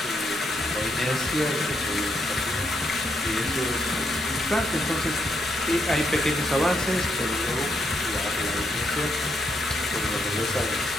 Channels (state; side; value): normal; both; correlation 0.78